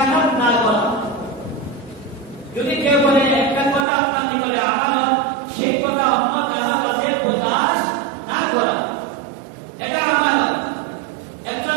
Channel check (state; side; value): drops out; left; at 3.9 s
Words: না করা। যদি কেউ বলে একটা কথা আপনার নিকটে আমানত, সেই কথা অন্য কারো কাছে প্রকাশ না করা, এটা আমানত। একজন